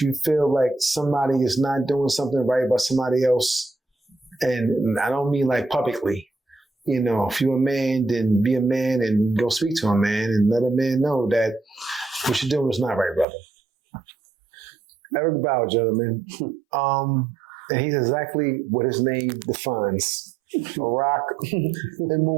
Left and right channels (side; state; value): left; drops out; at 13.2 s